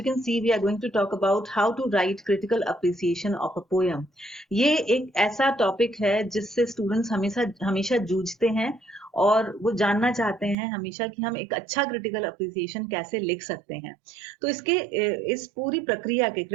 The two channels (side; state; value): left; drops out; at 10.6 s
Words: can see, we are going to talk about how to write critical appreciation of a poem. ये एक ऐसा topic है जिससे students हमेशा हमेशा जूझते हैं और वो जानना चाहते हैं हमेशा कि हम एक अच्छा क्रिटिकल अप्रिसिएशन कैसे लिख सकते हैं। तो इस पूरी प्रक्रिया के